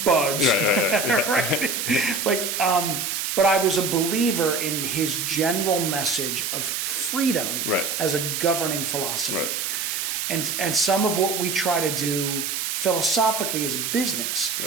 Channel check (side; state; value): right; noise; hiss, 2 dB below the sound